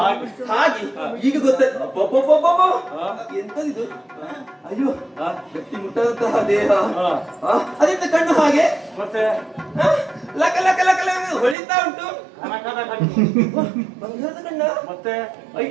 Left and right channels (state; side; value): drops out; left; at 11.6 s